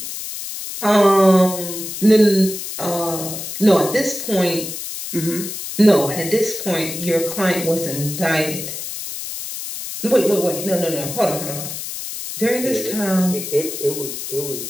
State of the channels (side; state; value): left; noise; hiss, 7 dB below the sound